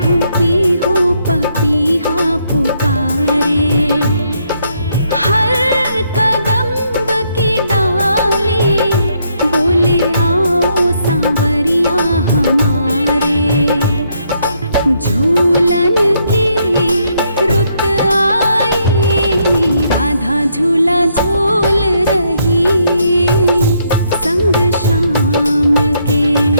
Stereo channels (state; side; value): inverted; both; correlation -0.73